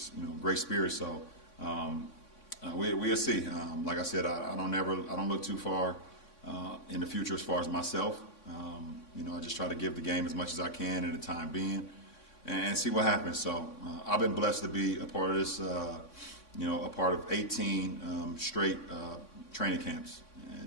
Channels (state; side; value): late; right; 3.6 ms